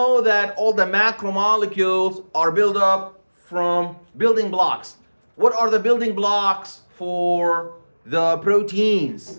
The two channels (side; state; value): both; inverted; correlation -1.00